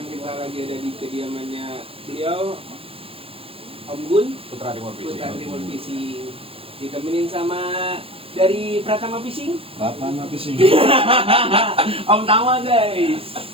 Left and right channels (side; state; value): left; late; 0.27 ms